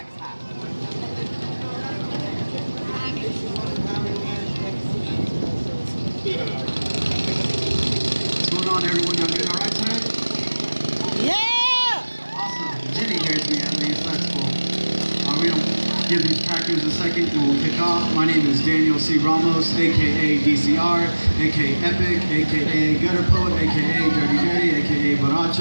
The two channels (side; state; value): both; inverted; correlation -1.00